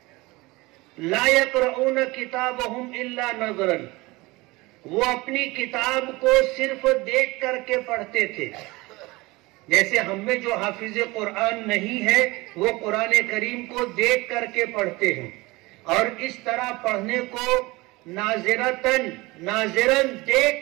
لا يقرؤون کتابهم الا نظرا، وہ اپنی کتاب کو صرف دیکھ کر کے پڑھتے تھے. جیسے ہم میں جو حافظ قرآن نہیں ہے وہ قرآن کریم کو دیکھ کر کے پڑھتے ہیں، اور اس طرح پڑھنے کو ناظرن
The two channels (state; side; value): quieter; left; 22.3 dB